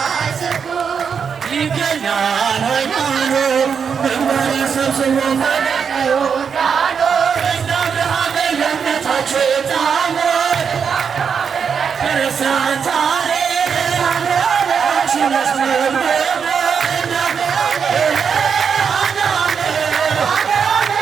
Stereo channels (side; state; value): left; quieter; 6.6 dB